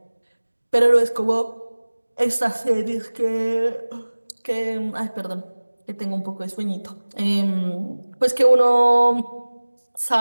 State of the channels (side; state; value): both; inverted; correlation -1.00